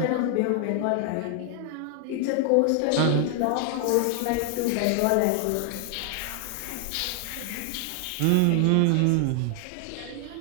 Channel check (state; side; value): different; both; correlation 0.00